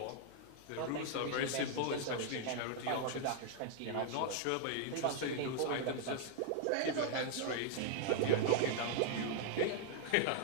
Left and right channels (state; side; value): different; both; correlation 0.00